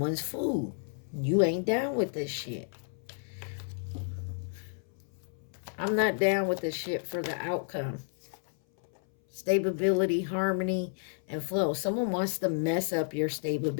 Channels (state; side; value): silent; right; 57 dB below the other